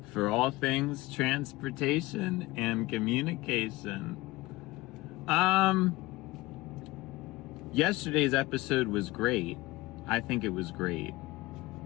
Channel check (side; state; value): right; quieter; 19.8 dB